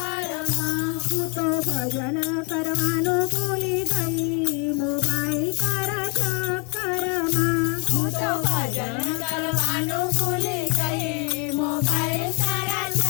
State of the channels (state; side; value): quieter; right; 33.4 dB